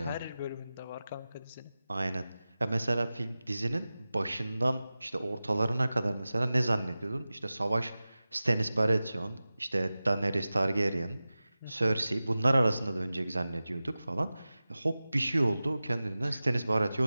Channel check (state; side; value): inverted; both; correlation -0.96